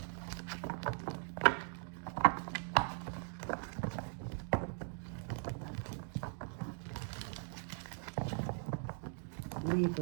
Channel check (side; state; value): left; silent; 51 dB below the other